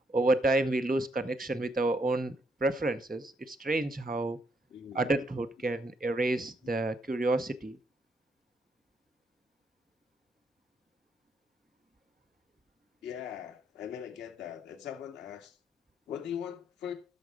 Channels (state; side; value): normal; both; correlation 0.75